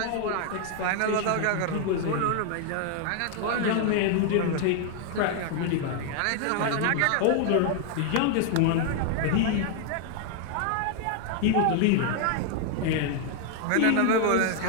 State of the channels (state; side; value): different; both; correlation 0.00